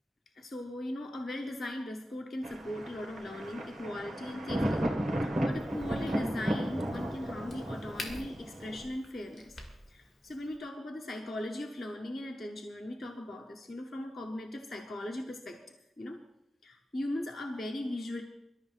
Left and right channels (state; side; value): normal; both; correlation 0.92